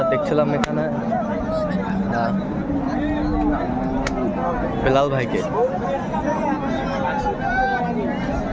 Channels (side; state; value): both; identical; correlation 1.00